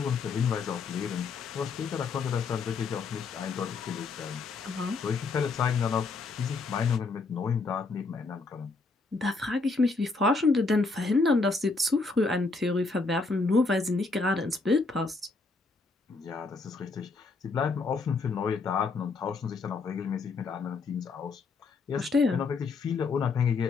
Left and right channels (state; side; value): quieter; right; 4.1 dB